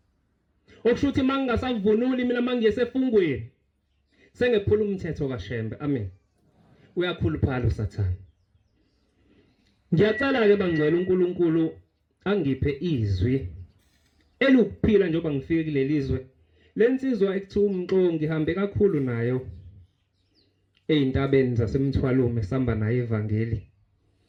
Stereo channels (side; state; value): both; identical; correlation 1.00